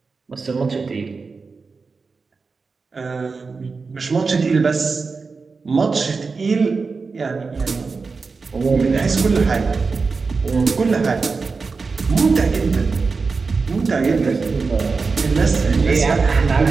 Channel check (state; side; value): quieter; left; 4.5 dB